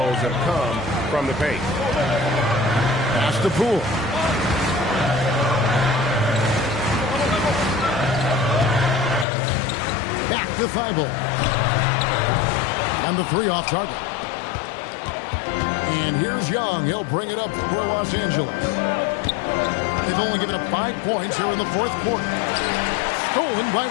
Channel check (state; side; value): drops out; right; at 9.2 s